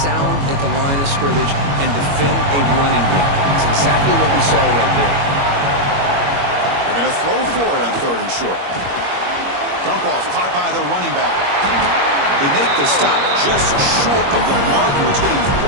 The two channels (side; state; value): left; late; 21 ms